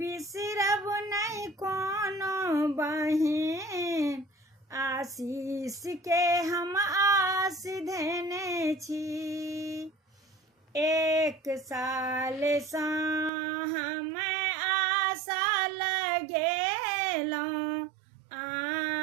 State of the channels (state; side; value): drops out; left; at 13.3 s